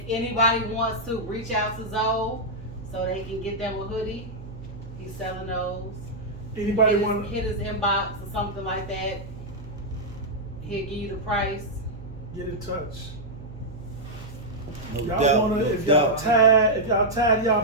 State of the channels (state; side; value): noise; right; hum, 13 dB below the sound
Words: anybody wants to reach out to Zoe so they can get them a hoodie, he's selling those. anybody want to Hit his inbox or something like that. He'll give you the price. get in touch. No Y'all doubt, wanna, no if y'all doubt. tired, if y'all tired of y'all